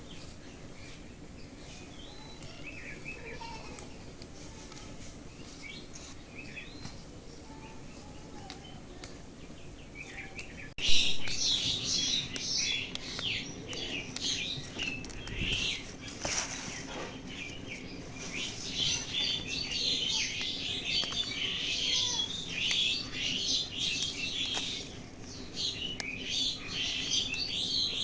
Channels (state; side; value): identical; both; correlation 1.00